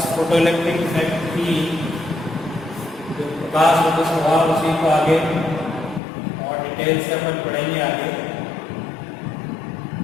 फोटो इलेक्ट्रिक इफेक्ट की जो प्रकाश होता स्वभाव उसी को आगे और डिटेल से अपन पढ़ेंगे आगे।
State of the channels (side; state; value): right; drops out; at 6.0 s